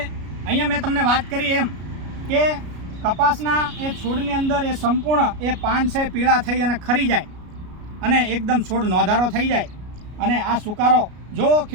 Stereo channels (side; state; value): left; late; 33 ms